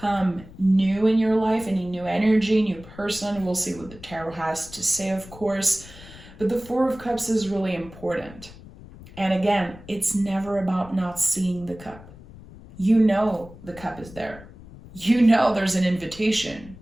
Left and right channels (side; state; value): left; noise; rumble, 18 dB below the sound